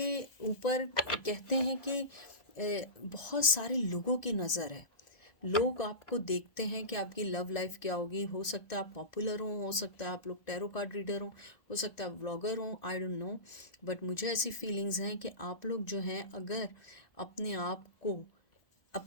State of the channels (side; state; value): right; late; 1.8 ms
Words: ऊपर कहते हैं कि बहुत सारे लोगों की नज़र है। लोग आपको देखते हैं कि आपकी लव लाइफ क्या होगी। हो सकता है आप पॉपुलर हो सकता है आप लोग टैरो कार्ड रीडर हो सकता है आप व्लॉगर हो, आई डोंट नो, बट मुझे ऐसी फीलिंग्स हैं कि आप लोग जो हैं अगर अपने आप को,